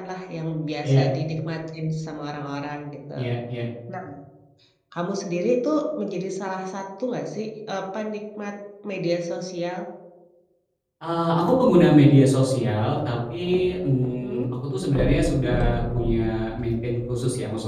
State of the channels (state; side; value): identical; both; correlation 1.00